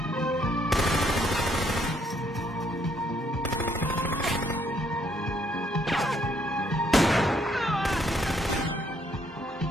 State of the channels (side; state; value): both; normal; correlation 0.69